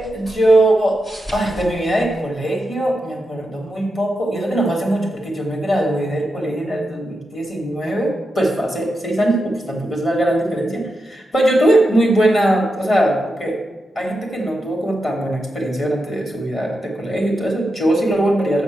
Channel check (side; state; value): both; normal; correlation 0.88